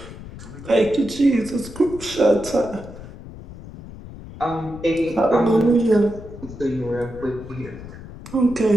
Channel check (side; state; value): left; noise; rumble, 14 dB below the sound